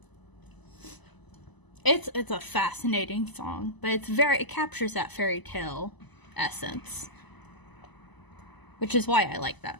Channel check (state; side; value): late; right; 1.0 ms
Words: It's a fascinating song, but it captures that fairy tale essence. which is why I like